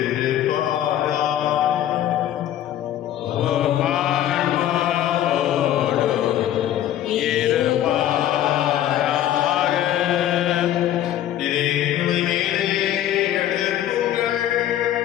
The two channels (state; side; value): quieter; right; 11.8 dB